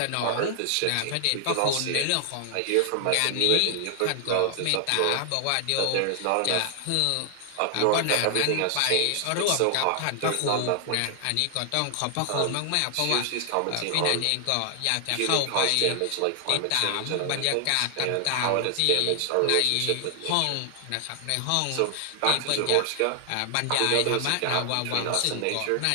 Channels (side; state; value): both; different; correlation 0.00